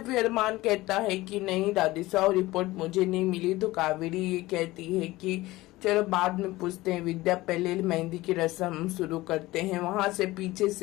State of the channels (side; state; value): right; quieter; 18.7 dB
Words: अरमान कहता है कि नहीं दादी साहब, रिपोर्ट मुझे नहीं मिली। तो कावेरी ये कहती है कि चलो बाद में पूछते हैं, विद्या पहले मेहंदी की रस्म शुरू करते हैं। वहां से पीछे